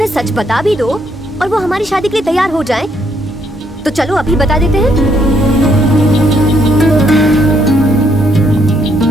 सच बता भी दो और वो हमारी शादी के लिए तैयार हो जाएं, तो चलो अभी बता देते हैं।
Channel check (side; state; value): both; normal; correlation 0.72